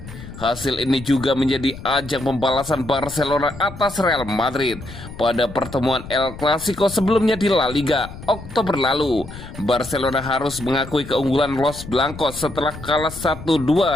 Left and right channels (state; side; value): noise; left; rumble, 13 dB below the sound